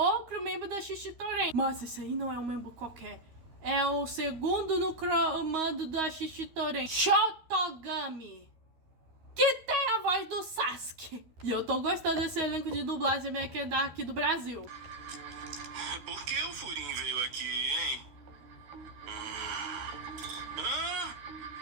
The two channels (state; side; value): late; left; 13 ms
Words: membro da Shishitoren. Mas esse aí não é um membro qualquer. É o segundo no comando da Shishitoren, Shotogami, que tem a voz do Sasuke. E eu tô gostando desse elenco de dublagem meio que daqui do Brasil. Por que o Furin veio aqui, hein?